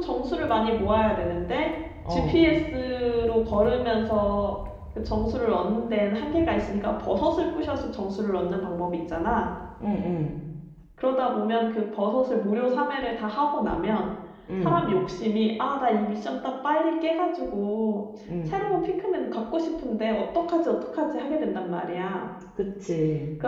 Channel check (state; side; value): identical; both; correlation 1.00